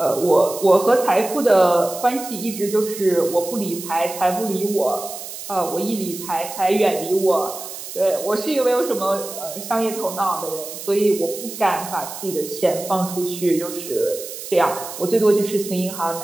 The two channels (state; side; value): noise; right; hiss, 10 dB below the sound